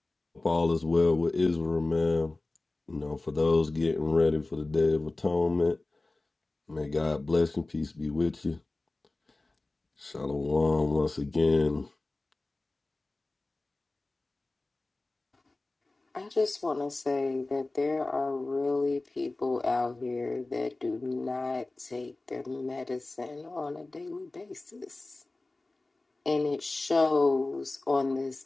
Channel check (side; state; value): right; quieter; 3.1 dB